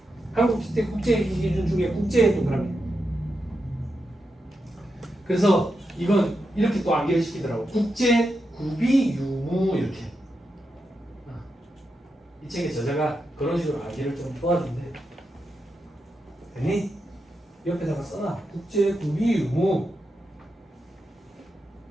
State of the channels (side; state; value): both; normal; correlation 0.87